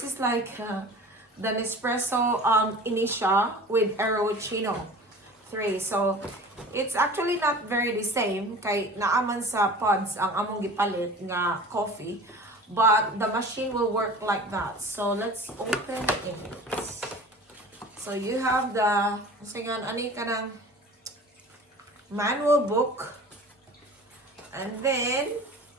is like the Nespresso Initia with Aerochino 3. So, it's actually not very the same kay naaman sa pods ang among gipalit nga coffee. But the machine will work like that. So, let's open it. So, you have the, ani ka ng manual book. And then,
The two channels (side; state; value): both; normal; correlation 0.40